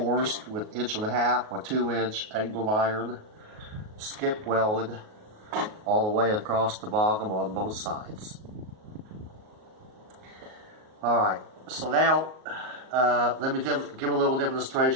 with 1.5 by 2-inch angle iron, skip welded all the way across the bottom on both sides. Alright, so now let me give a little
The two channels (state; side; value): late; left; 38 ms